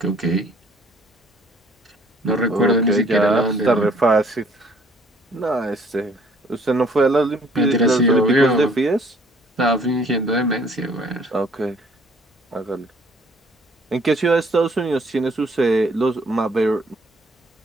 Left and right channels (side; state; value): both; normal; correlation 0.59